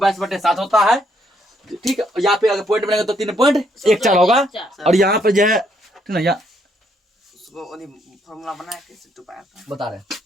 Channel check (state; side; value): normal; both; correlation 0.72